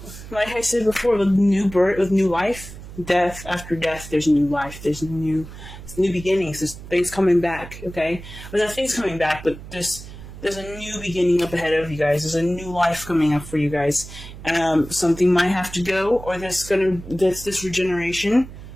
like I said before, with new birth, with new life, death after death, there's new life. There's new beginnings. There's things coming back. Okay, well, not things coming back, but there's a new beginning up ahead of you guys. There's a new life coming up for you guys. Something might have to go, or this regeneration,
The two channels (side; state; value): right; noise; hum, 14 dB below the sound